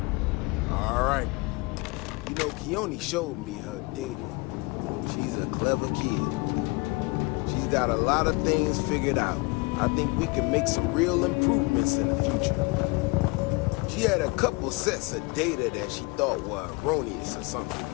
All right. You know, Keone showed me her data. She's a clever kid. She's got a lot of things figured out. I think we can make some real improvements in the future. She had a couple sets of data that she thought were erroneous or something.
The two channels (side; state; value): right; quieter; 26.9 dB